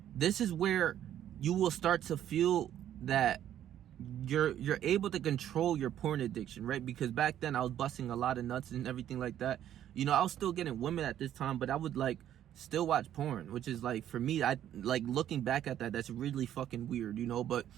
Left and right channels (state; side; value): quieter; left; 11.1 dB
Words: this is where you will start to feel that you're able to control your porn addiction, right? Because back then I was busting a lot of nuts and everything like that. You know, I was still getting women at this time, but I would, like, still watch porn, which is, like, for me, I like looking back at that, that's really fucking weird, you know. But,